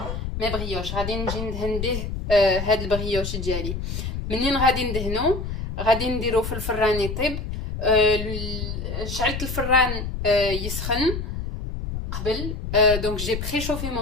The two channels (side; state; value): left; noise; rumble, 5 dB below the sound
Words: brioches. غادي نجي ندهن به هاد البريوش ديالي. منين غادي ندهنو غادي نديرو في الفران يطيب. شعلت الفران يسخن قبل. Donc j'ai préchauffé